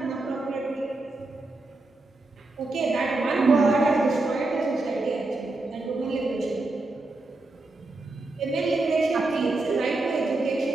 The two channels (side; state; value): left; quieter; 3.1 dB